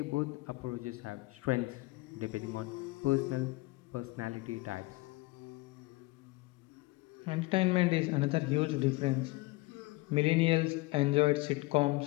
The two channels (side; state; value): right; quieter; 21.9 dB